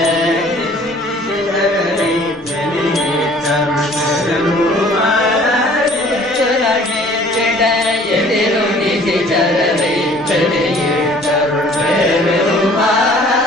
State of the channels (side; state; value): both; normal; correlation 0.53